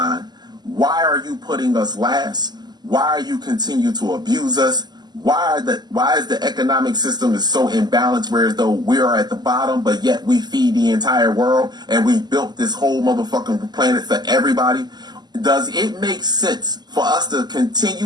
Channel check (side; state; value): left; late; 0.21 ms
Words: why are you putting us last? Why are you continue to abuse us? Why is the economic system is so imbalanced, whereas though we are at the bottom, but yet we feed the entire world and we built this whole motherfucking planet for everybody? Does it make sense for us to